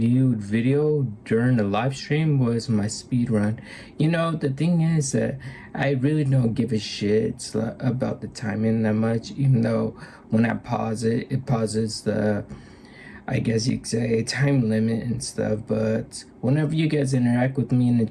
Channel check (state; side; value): identical; both; correlation 1.00